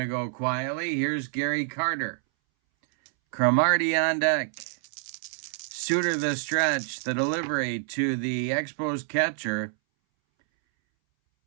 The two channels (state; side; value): silent; left; 60 dB below the other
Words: go quietly. Here's Gary Carter. Cromartie on deck. Suter the stretch. The delivery to the Expos catcher.